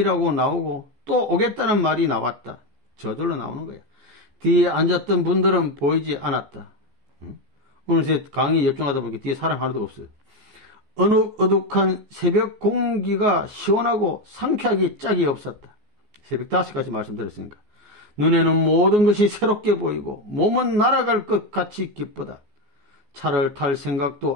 나오고 또 오겠다는 말이 나왔다. 저절로 나오는 거야. 뒤에 앉았던 분들은 보이지 않았다. 오늘 강의 집중하다 보니까 뒤에 사람 하나도 없어요. 어둑어둑한 새벽 공기가 시원하고 상쾌하기 짝이 없었다. 새벽 5시까지 말씀드렸으니까. 눈에는 모든 것이 새롭게 보이고 몸은 날아갈 것 같이 기쁘다. 차를 탈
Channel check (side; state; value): left; late; 14 ms